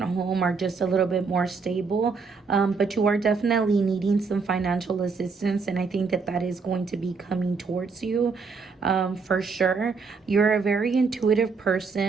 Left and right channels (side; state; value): left; quieter; 4.8 dB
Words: home are just a little bit more stable. But you are definitely needing some financial assistance, and I think that that is going to be coming towards you for sure. You're a very intuitive